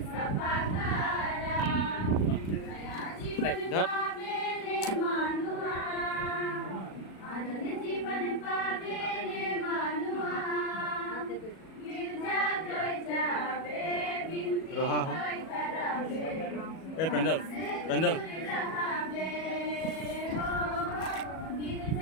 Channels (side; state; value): right; late; 37 ms